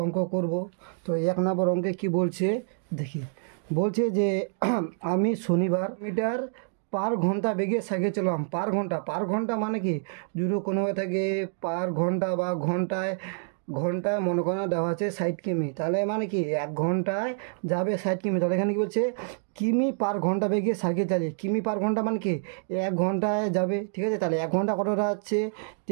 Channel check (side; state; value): left; silent; digital silence